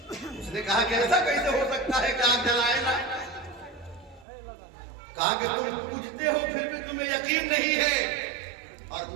اس نے کہا کہ ایسا کیسے ہو سکتا ہے کہ آگ جلائے نا؟ کہا کہ تم پوجتے ہو پھر بھی تمہیں یقین نہیں ہے، اور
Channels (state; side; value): drops out; left; at 4.2 s